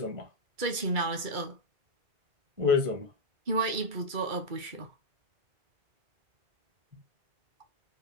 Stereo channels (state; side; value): late; left; 2.3 ms